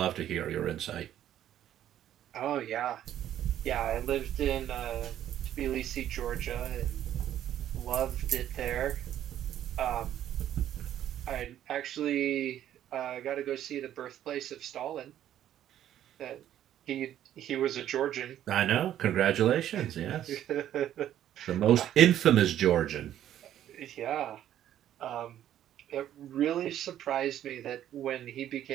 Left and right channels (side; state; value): left; quieter; 11.4 dB